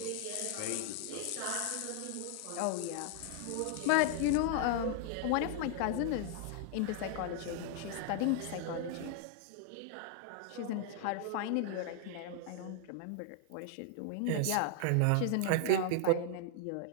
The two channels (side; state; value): both; different; correlation 0.00